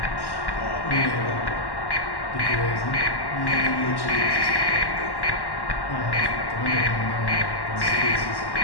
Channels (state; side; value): late; right; 1.1 ms